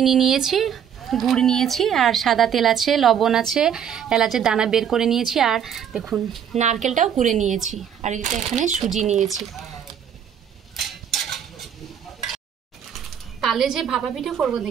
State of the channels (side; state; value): left; quieter; 8.6 dB